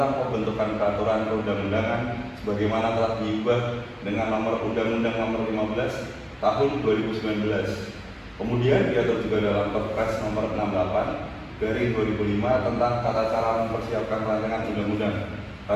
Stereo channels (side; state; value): both; identical; correlation 1.00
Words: pembentukan peraturan perundang-undangan sebagaimana telah diubah dengan Nomor Undang-Undang Nomor 15 Tahun 2019. Kemudian diatur juga dalam Perpres Nomor 68/2005 tentang tata cara mempersiapkan rancangan undang-undang,